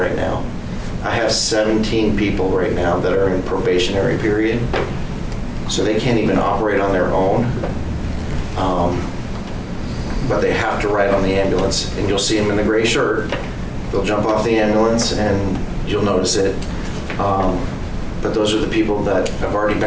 now. I have 17 people right now that are in probationary period, so they can't even operate on their own. But they have to ride on the ambulance, and you'll see them in the gray shirt. They'll jump off the ambulance, and you'll notice it. But those are the people that have already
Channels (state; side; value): identical; both; correlation 1.00